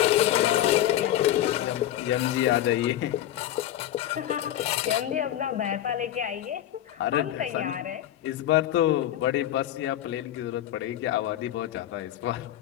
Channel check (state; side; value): quieter; right; 12.4 dB